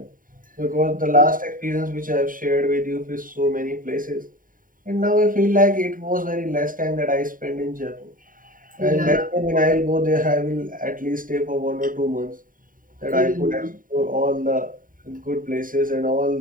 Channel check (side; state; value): left; late; 0.40 ms